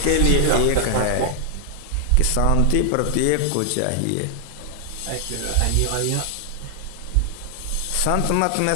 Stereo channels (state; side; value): different; both; correlation 0.00